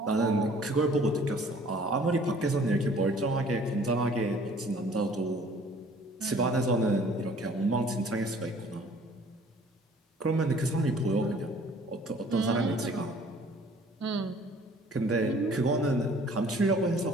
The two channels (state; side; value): normal; both; correlation 0.54